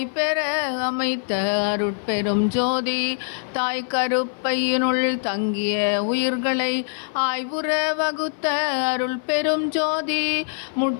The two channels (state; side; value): silent; right; 56 dB below the other